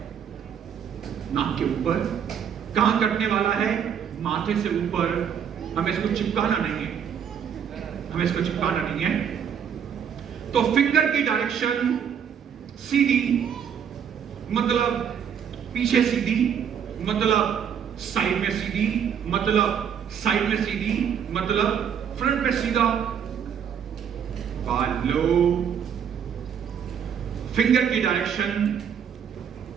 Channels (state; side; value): quieter; left; 8.0 dB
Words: नाक के ऊपर। कहां कटने वाला है, माथे से ऊपर। हमें इसको चिपकाना नहीं है, तो फिंगर की डायरेक्शन सीधी, मतलब पीछे सीधी, मतलब साइड में सीधी, मतलब साइड में सीधी, मतलब फ्रंट पे सीधा। बाल लो, फिंगर की डायरेक्शन